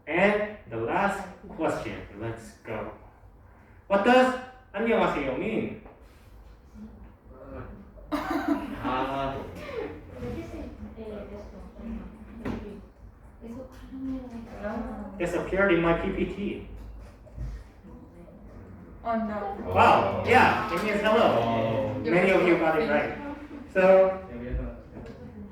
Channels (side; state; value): both; identical; correlation 1.00